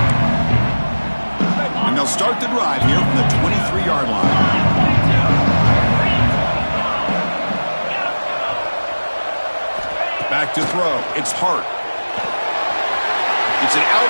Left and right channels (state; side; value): inverted; both; correlation -1.00